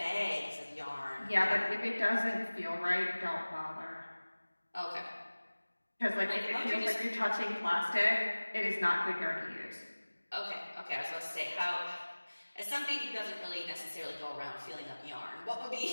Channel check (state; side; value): inverted; both; correlation -1.00